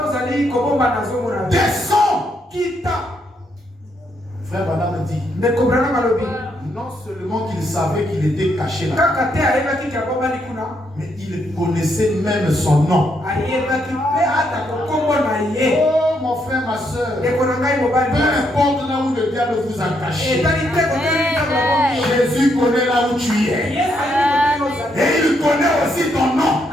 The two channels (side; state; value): both; normal; correlation 0.76